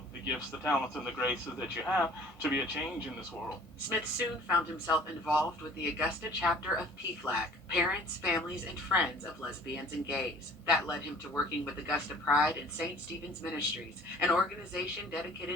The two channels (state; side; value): normal; both; correlation 0.51